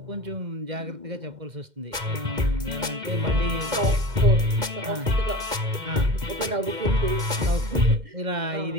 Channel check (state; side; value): late; left; 2.1 ms